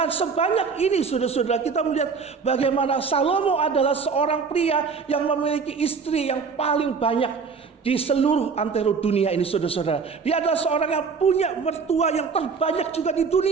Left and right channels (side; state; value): left; quieter; 5.3 dB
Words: sebanyak ini saudara-saudara, kita melihat bagaimana Salomo adalah seorang pria yang memiliki istri yang paling banyak di seluruh antero dunia ini, saudara-saudara. Dia adalah seorang yang punya mertua yang terbanyak juga di